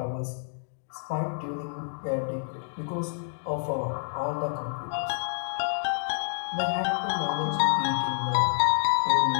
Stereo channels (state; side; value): silent; right; 59 dB below the other